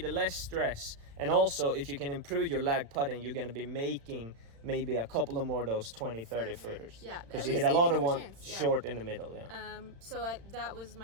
less stress. And also, if you can improve your lag putting, you're going to be making maybe a couple of more of those 20-30 footers. Yeah, because you hit a lot of one short in the middle. That was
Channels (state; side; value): late; left; 36 ms